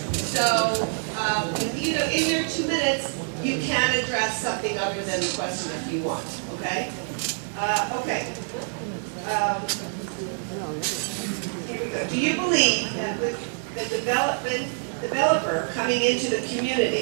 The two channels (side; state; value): left; silent; 61 dB below the other